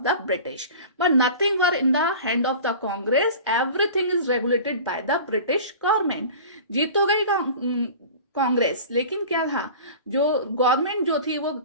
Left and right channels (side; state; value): both; inverted; correlation -0.38